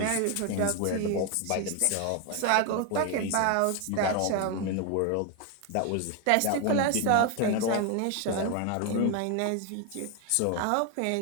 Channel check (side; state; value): both; different; correlation 0.01